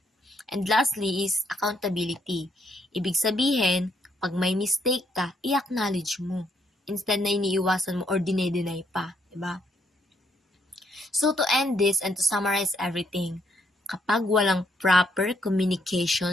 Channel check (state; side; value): normal; both; correlation 0.73